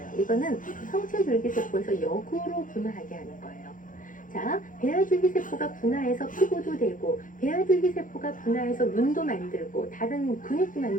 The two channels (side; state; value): right; late; 0.38 ms